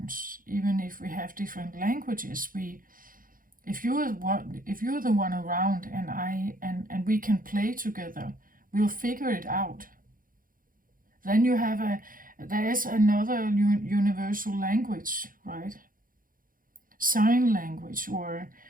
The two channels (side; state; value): left; late; 0.40 ms